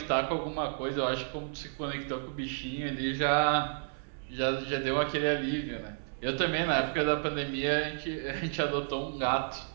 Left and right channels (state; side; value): silent; left; 57 dB below the other